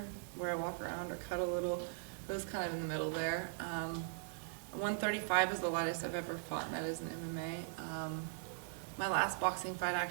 where I walk around or cut a little? It was kind of in the middle there. 135 is the lightest I've ever fought, and that is in MMA. My last boxing fight,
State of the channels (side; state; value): left; silent; 51 dB below the other